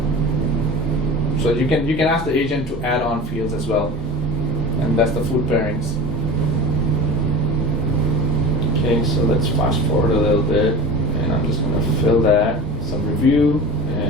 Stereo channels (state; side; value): normal; both; correlation 0.33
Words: you can ask the agent to add on fields as well, and that's the food pairings. Okay, so let's fast forward a little bit, and I'm just going to fill that, some review,